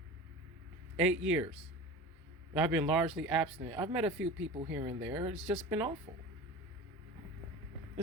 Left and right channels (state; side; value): normal; both; correlation 0.33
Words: 8 years. I've been largely abstinent. I've met a few people here and there. It's just been awful.